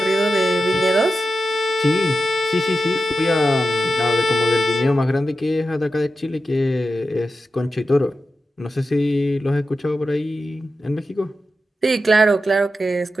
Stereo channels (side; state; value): both; normal; correlation 0.91